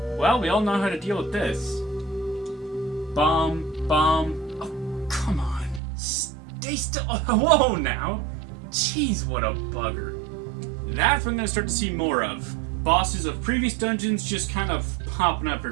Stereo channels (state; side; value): drops out; left; at 5.8 s